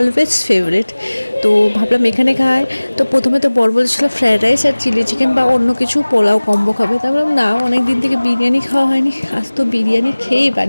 ফেভারিট। তো ভাবলাম এখানে খাই। তো প্রথমে তো বর বলেছিল ফ্রায়েড রাইস আর চিলি চিকেন বা অন্য কিছু পোলাও কম্বো খাবে। তা ভাবলাম না, অনেক দিন থেকে বিরিয়ানি খাওয়া হয়নি, আজ তো বিরিয়ানি খেয়েই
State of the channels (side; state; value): both; inverted; correlation -1.00